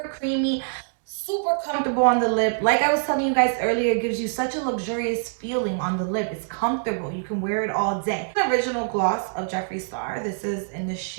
creamy, super comfortable on the lip. Like I was telling you guys earlier, it gives you such a luxurious feeling on the lip. It's comfortable. You can wear it all day. The original gloss of Jeffree Star. This is in the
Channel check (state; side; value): silent; left; digital silence